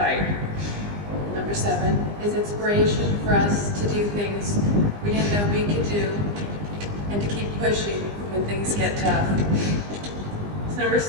Number 7, his inspiration for us to do things we didn't know we could do and to keep pushing when things get tough. Number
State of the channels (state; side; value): late; left; 20 ms